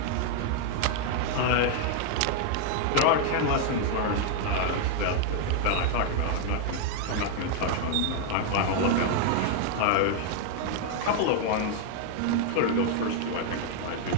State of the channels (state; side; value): different; both; correlation 0.00